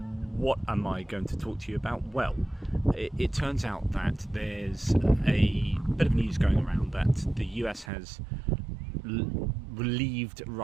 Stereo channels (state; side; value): drops out; left; at 7.9 s